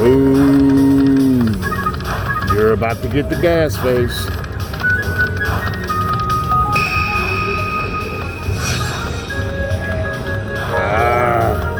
Ooh. You're about to get the gas face.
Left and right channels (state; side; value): identical; both; correlation 1.00